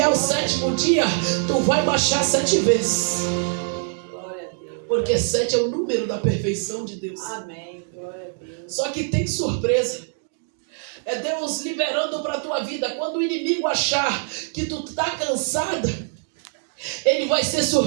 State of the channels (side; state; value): left; silent; 59 dB below the other